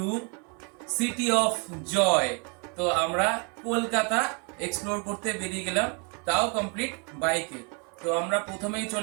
city of joy. তো আমরা কলকাতা এক্সপ্লোর করতে বেরিয়ে গেলাম, তাও কমপ্লিট বাইকে। তো আমরা প্রথমেই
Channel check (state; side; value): quieter; left; 35.7 dB